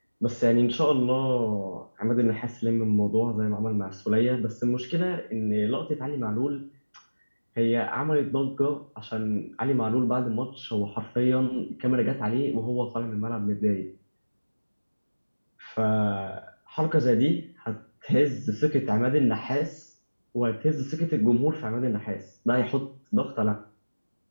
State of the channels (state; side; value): inverted; both; correlation -1.00